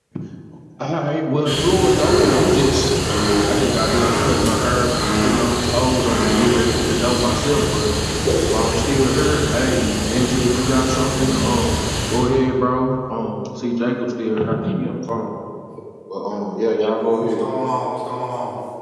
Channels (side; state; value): both; identical; correlation 1.00